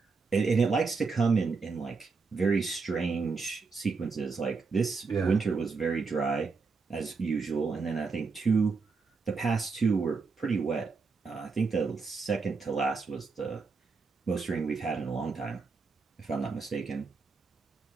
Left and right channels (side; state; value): left; quieter; 4.6 dB